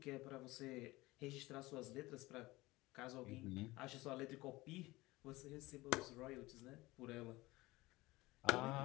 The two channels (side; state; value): right; quieter; 20.3 dB